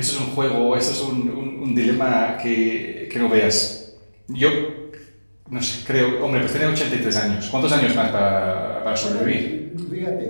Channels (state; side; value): inverted; both; correlation -1.00